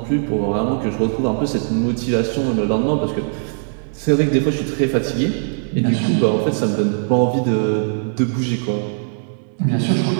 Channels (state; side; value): silent; left; 66 dB below the other